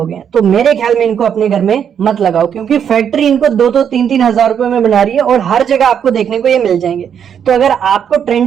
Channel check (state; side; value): quieter; left; 8.3 dB